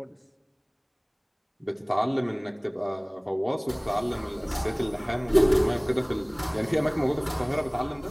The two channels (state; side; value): identical; both; correlation 1.00